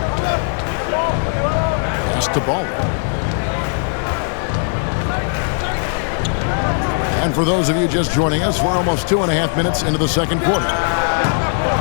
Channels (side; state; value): right; silent; 58 dB below the other